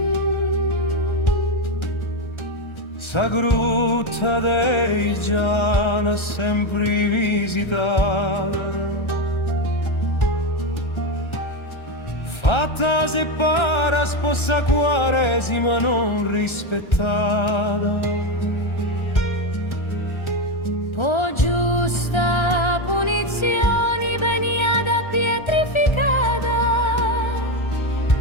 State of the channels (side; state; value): right; late; 1.3 ms